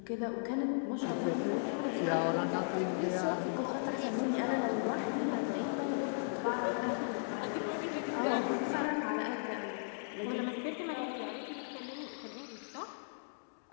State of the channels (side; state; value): right; silent; digital silence